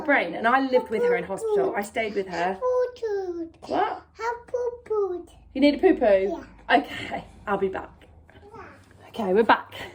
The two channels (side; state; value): both; identical; correlation 1.00